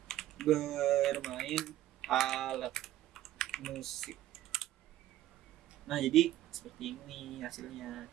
bermain alat musik. Nah, jadi seperti ini hasilnya.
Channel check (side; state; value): left; quieter; 14.0 dB